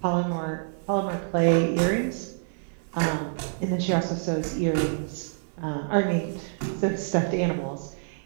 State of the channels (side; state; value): left; silent; 60 dB below the other